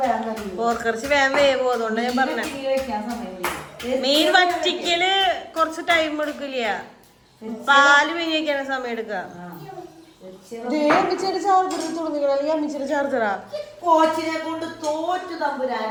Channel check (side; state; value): both; identical; correlation 1.00